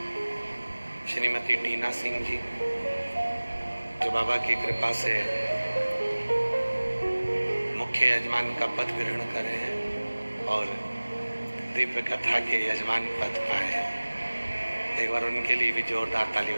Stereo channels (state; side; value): inverted; both; correlation -1.00